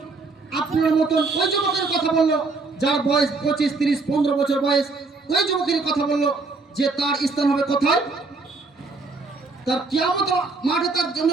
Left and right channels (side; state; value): left; quieter; 3.9 dB